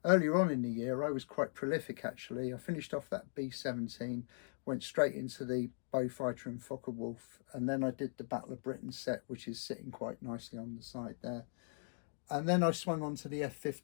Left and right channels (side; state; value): right; silent; digital silence